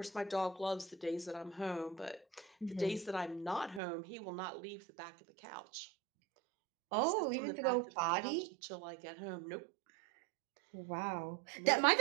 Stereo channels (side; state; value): left; drops out; at 3.8 s